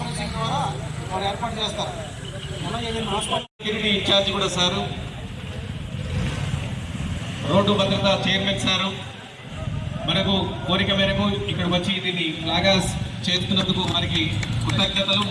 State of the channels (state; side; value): identical; both; correlation 1.00